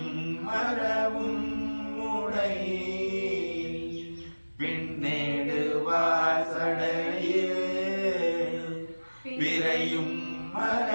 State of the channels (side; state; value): both; inverted; correlation -1.00